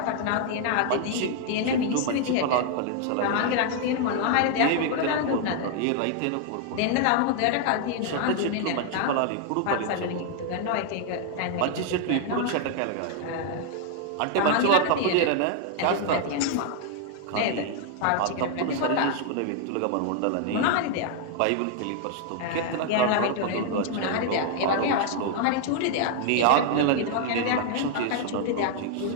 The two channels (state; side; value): different; both; correlation 0.00